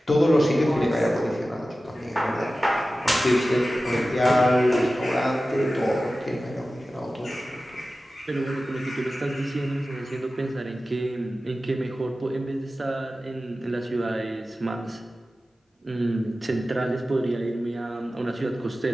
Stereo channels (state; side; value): normal; both; correlation 0.95